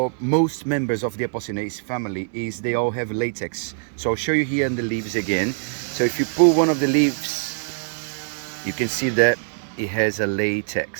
most members of the Apocynaceae family is they all have latex. So I'll show you here in the leaves again. So if you pull one of the leaves, you can see that it has a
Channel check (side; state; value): left; silent; 63 dB below the other